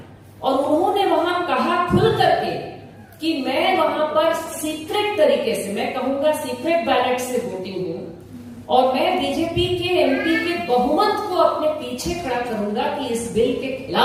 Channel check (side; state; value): both; identical; correlation 1.00